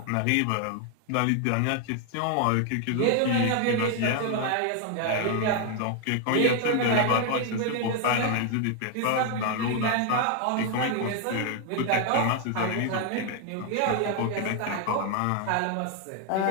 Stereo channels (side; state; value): both; different; correlation 0.00